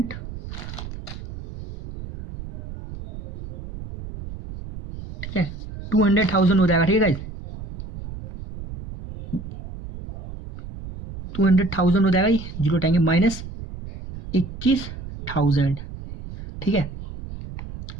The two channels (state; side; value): noise; right; rumble, 9 dB below the sound